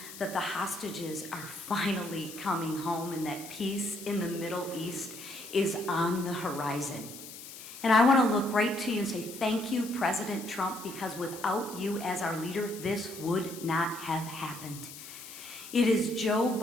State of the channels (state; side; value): noise; left; hiss, 13 dB below the sound